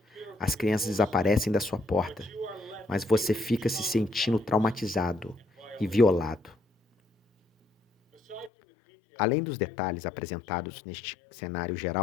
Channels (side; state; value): right; drops out; at 8.5 s